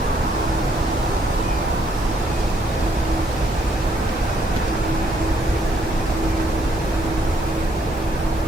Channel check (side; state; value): both; normal; correlation 0.70